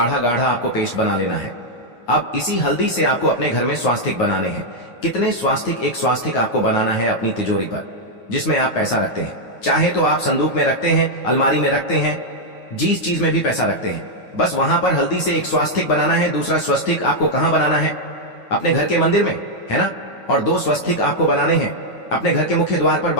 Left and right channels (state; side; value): late; right; 9.4 ms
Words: गाढ़ा आपको पेस्ट बना लेना है। अब इसी हल्दी से आपको अपने घर में स्वास्तिक बनाने हैं। कितने स्वास्तिक? एक स्वास्तिक आपको बनाना है अपनी तिजोरी पर, जिसमें आप पैसा रखते हैं। चाहे तो आप संदूक में रखते हैं, अलमारी में रखते हैं, जिस चीज में भी पैसा रखते हैं, बस वहां पर हल्दी से एक स्वास्तिक बनाना है। दूसरा स्वास्तिक आपको कहां बनाना है? अपने घर के मंदिर में, है ना। और 2 स्वास्तिक आपको बनाने हैं अपने घर के मुख्य द्वार पर